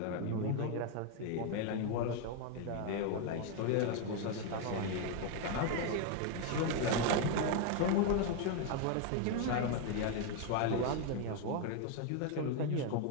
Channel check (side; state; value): both; different; correlation 0.01